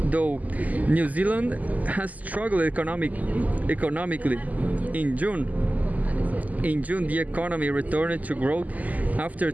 though, New Zealand has struggled economically. In June, the economy returned to growth after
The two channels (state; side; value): late; left; 0.078 ms